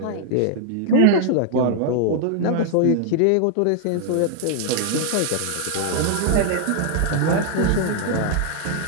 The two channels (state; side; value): different; both; correlation 0.00